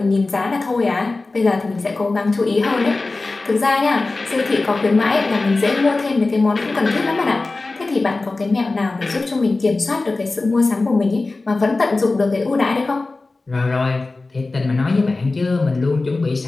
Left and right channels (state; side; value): quieter; right; 3.4 dB